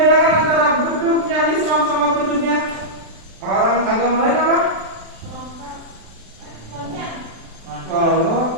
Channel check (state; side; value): late; left; 36 ms